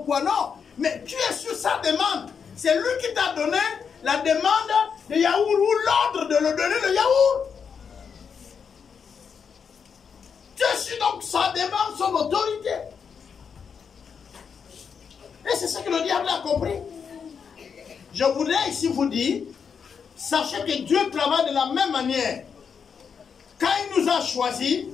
non. Mais tu es sur sa demande. C'est lui qui t'a donné la demande de yaourt ou l'ordre de le donner le yaourt. Tu es sur donc sa demande, son autorité. Et c'est ce que le diable a compris. Je voudrais ici vous dire, sachez que Dieu travaille de la même manière. Quand il nous a choisis,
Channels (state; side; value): quieter; right; 6.5 dB